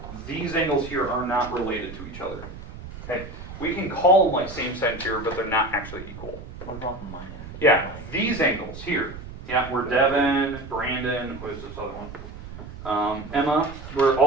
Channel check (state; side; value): noise; right; rumble, 13 dB below the sound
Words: these angles here are not related to each other. Okay, we can call them like same side here, but they're not actually equal. Yeah, these angles here. Yeah, we're Devin, Brandon, who is this other one? Emma, where